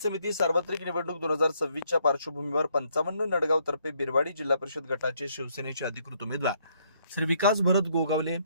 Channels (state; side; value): inverted; both; correlation -0.70